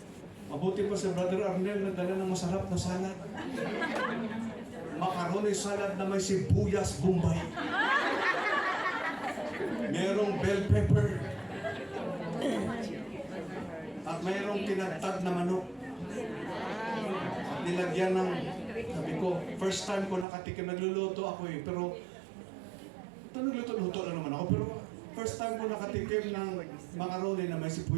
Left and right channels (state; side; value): drops out; left; at 20.2 s